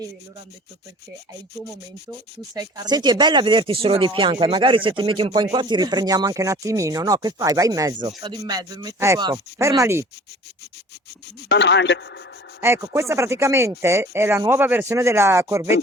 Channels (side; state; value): both; normal; correlation 0.46